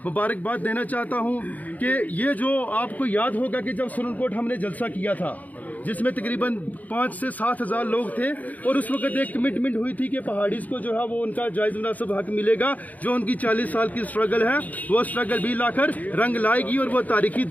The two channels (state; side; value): late; right; 0.077 ms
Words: मुबारकबाद देना चाहता हूँ कि ये जो आपको याद होगा कि जब सुरनकोट हमने जलसा किया था, जिसमें तकरीबन 5 से 7 हज़ार लोग थे, और उस वक्त एक कमिटमेंट हुई थी कि पहाड़ीज़ को जो है वो उनका जायज़ मुनासिब हक मिलेगा। जो उनकी 40 साल की स्ट्रगल है, वो स्ट्रगल भी लाकर रंग लाएगी और वो तारीखी